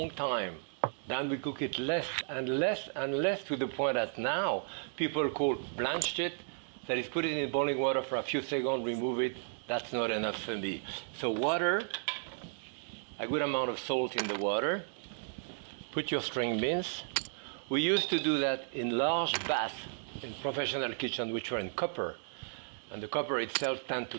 time. Then we cook it less and less and less, to the point that now people call blanched it. That is, put it in boiling water for a few seconds, remove it. That's not enough for me. So water, a good amount of salt in the water. Put your string beans. We used to do that in large baths in professional kitchens, which were in copper. And the copper itself tends to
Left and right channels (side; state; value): left; silent; digital silence